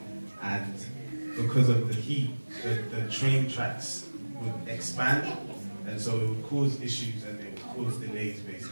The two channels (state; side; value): inverted; both; correlation -1.00